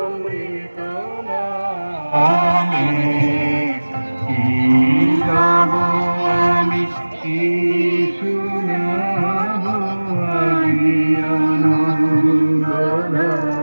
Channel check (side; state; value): both; inverted; correlation -1.00